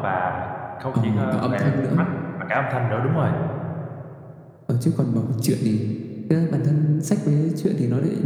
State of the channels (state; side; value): identical; both; correlation 1.00